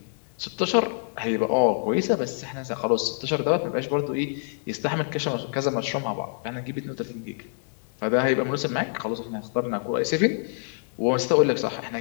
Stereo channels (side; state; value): right; silent; digital silence